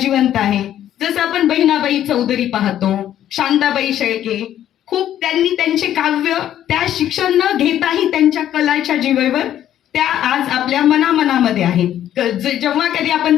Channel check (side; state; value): right; quieter; 11.4 dB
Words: आहे. जसं आपण बहिणाबाई चौधरी पाहतो, शांताबाई शेळके, खूप त्यांनी त्यांचे काव्य त्या शिक्षण न घेताही त्यांच्या कलाच्या जीवेवर त्या आज आपल्या मनामध्ये आहेत. जेव्हा कधी आपण